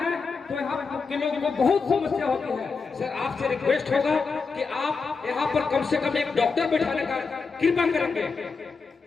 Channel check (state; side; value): quieter; right; 4.8 dB